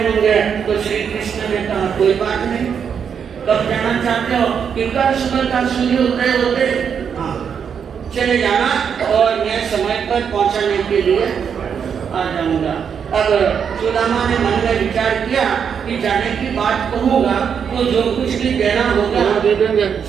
होंगे। तो श्री कृष्ण ने कहा कोई बात नहीं, कब जाना चाहते हो? कि कल सुबह का सूर्य उदय होते चले जाना और मैं समय पर पहुंचाने के लिए आ जाऊंगा। अब सुदामा ने मन में विचार किया कि जाने की बात कहूँगा तो जो कुछ भी देना होगा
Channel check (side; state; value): left; quieter; 7.2 dB